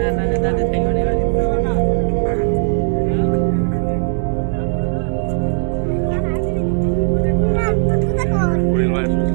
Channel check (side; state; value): left; silent; 68 dB below the other